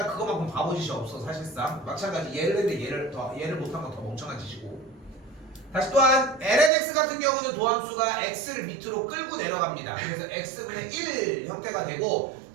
그거만큼 바보짓이 없어. 사실상 마찬가지 얘를 했는데 얘를 못한 건 더 멍청한 짓이고. 다시 또한 lnx 같은 경우는 도함수가 x를 밑으로 끌고 내려갑니다. 그래서 x분의 1 형태가 되고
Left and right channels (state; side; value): drops out; left; at 6.7 s